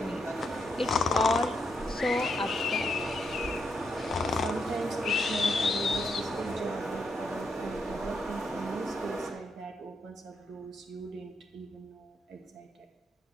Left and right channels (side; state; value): both; normal; correlation 0.80